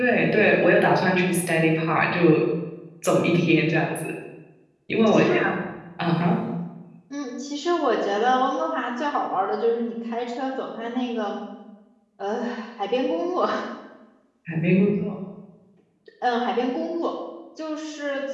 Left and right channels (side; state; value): both; identical; correlation 1.00